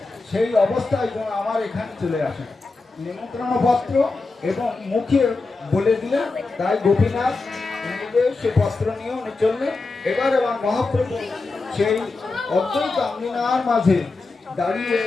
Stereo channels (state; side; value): quieter; right; 3.7 dB